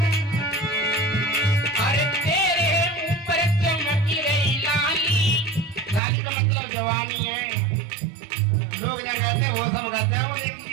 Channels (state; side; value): drops out; left; at 6.0 s